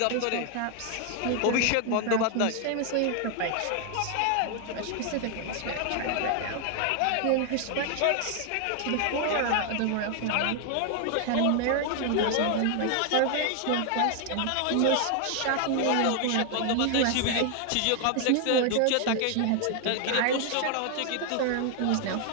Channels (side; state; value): both; different; correlation 0.00